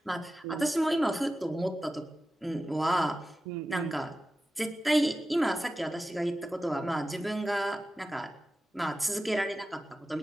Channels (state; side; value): normal; both; correlation 0.94